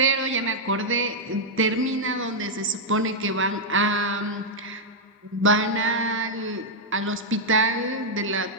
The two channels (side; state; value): both; normal; correlation -0.04